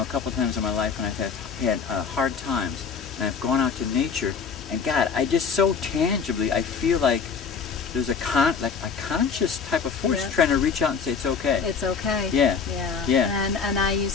a couple times in my life when I've had hard times, and I've gone out to nature, and God, I just so tangibly, I feel like there's a conscious type of force trying to reach out and say it's okay. It's okay. Yeah. And I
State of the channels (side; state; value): right; quieter; 5.9 dB